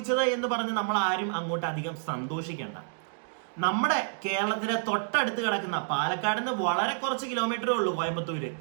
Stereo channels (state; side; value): silent; left; digital silence